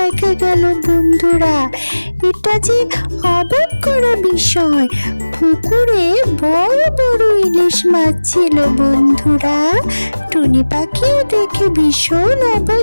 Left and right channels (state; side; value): inverted; both; correlation -1.00